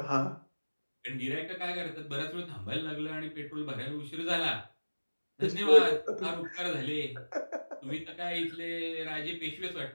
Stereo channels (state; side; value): inverted; both; correlation -1.00